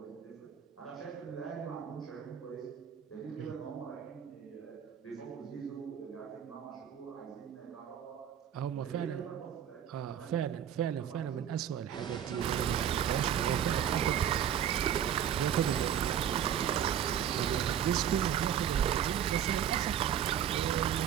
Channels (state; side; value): quieter; left; 9.5 dB